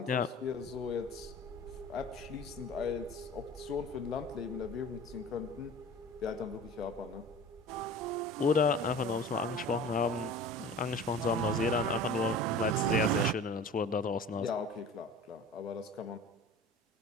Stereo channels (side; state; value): both; normal; correlation 0.40